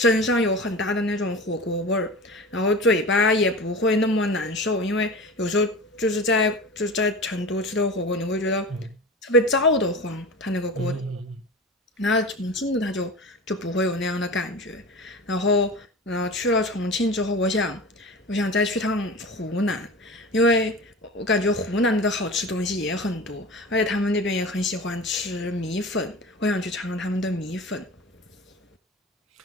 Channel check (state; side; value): normal; both; correlation 0.32